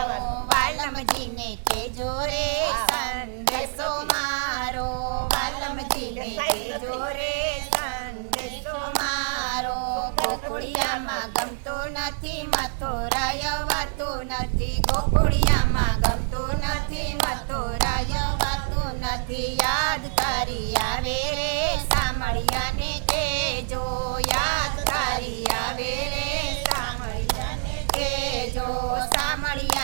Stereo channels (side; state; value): left; silent; digital silence